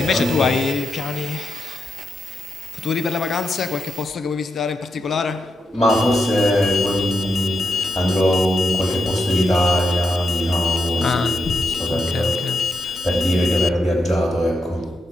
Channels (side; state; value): both; normal; correlation 0.84